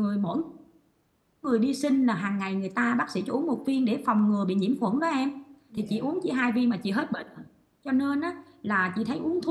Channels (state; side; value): identical; both; correlation 1.00